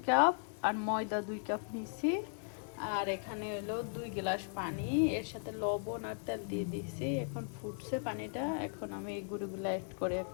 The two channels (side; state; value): right; silent; 53 dB below the other